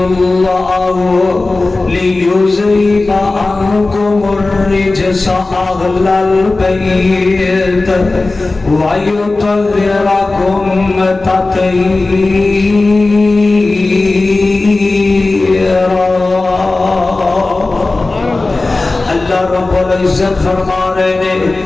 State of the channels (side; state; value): right; quieter; 3.3 dB